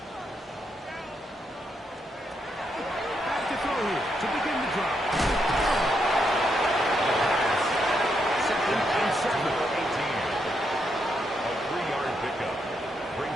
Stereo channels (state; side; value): normal; both; correlation 0.79